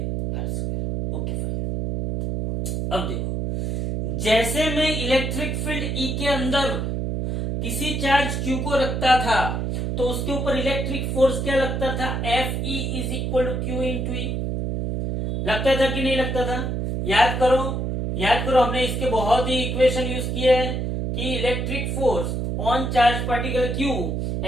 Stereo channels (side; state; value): right; noise; hum, 1 dB below the sound